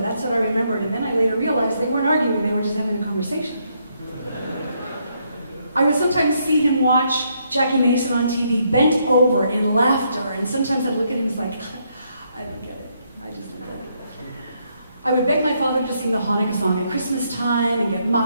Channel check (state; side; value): inverted; both; correlation -0.75